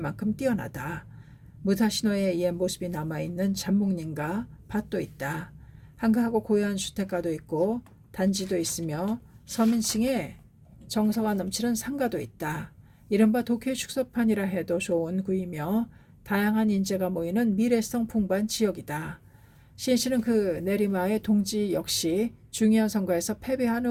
뛰어나다. 무타시노의 옛 모습이 남아있는 잠목림과 밭도 있다. 한가하고 고요한 주택가도 있고 단지도 있으며 서민층의 정서가 넘치는 상가도 있다. 이른바 도쿄의 축소판이라 해도 좋은 구이며 다양한 인재가 모이는 미래성 풍부한 지역이다. 시인씨는 그 내리마의 동지 역시 중요한 선거에서 패배한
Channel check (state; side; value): identical; both; correlation 1.00